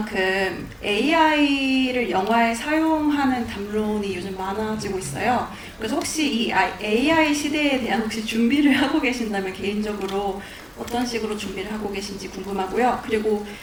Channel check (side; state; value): both; identical; correlation 1.00